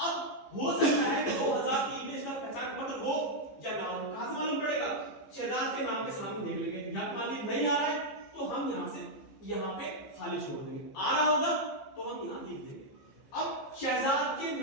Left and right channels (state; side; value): late; right; 15 ms